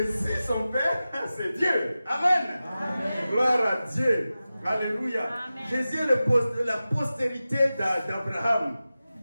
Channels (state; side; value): inverted; both; correlation -0.95